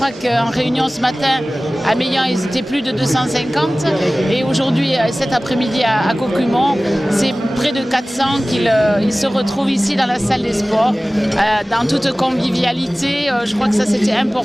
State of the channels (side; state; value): both; normal; correlation 0.98